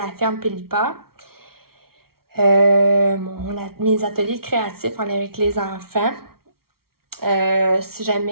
ferme Pélipa. Mes ateliers créatifs en lien avec les enfants. Si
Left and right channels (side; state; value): left; late; 0.94 ms